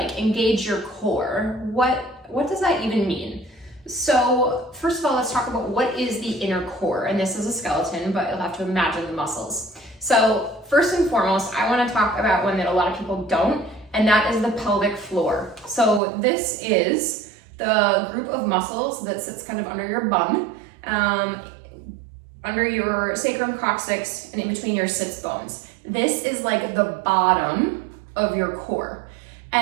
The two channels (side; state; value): left; drops out; at 16.0 s